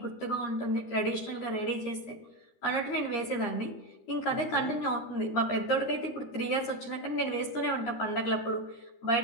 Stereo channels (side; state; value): right; late; 13 ms